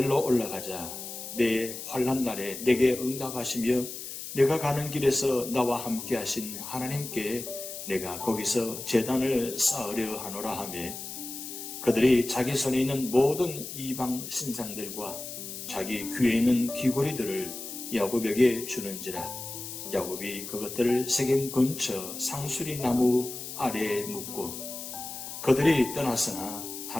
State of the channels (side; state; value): left; noise; hiss, 9 dB below the sound